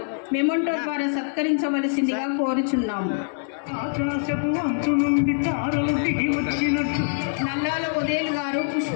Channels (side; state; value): right; silent; digital silence